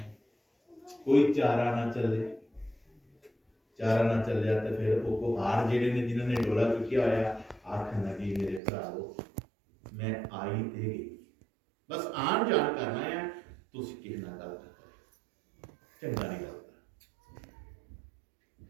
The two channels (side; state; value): left; drops out; at 8.6 s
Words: ਕੋਈ ਚਾਰਾ ਨਾ ਚੱਲਿਆ ਤੇ ਫਿਰ ਉਹ ਕੁਹਾਰ ਜਿਹੜੇ ਨੇ ਜਿਨ੍ਹਾਂ ਨੇ ਡੋਲਾ ਚੁੱਕਿਆ ਹੋਇਆ ਆਖਣ ਲੱਗੀ, ਮੇਰੇ ਭਰਾਵੋ ਮੈਂ ਆਈ ਤੇ ਗਈ, ਬਸ ਆਣ ਜਾਣ ਕਰਨਾ ਹੈ, ਤੁਸੀਂ ਕਿਸੇ ਨਾਲ ਗੱਲ ਨਾ ਕਰੋ, ਚੰਗਾ ਨਹੀਂ ਲੱਗਦਾ।